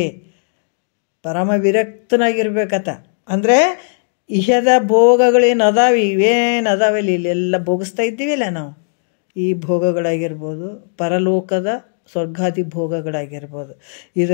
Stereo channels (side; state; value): right; silent; digital silence